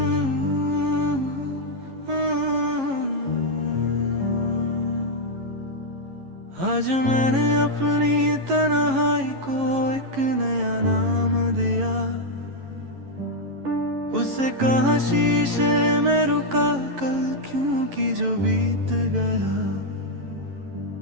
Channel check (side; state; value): left; late; 11 ms